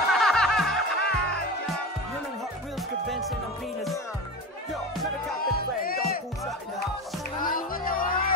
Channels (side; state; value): both; normal; correlation 0.27